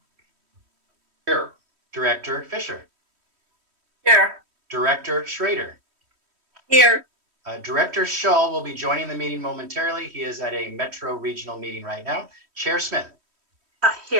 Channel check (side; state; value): left; late; 3.1 ms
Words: Here. Director Fisher. Here. Director Schrader. Here. Director Shull will be joining the meeting momentarily. He is at a Metro Regional meeting right now. Chair Smith.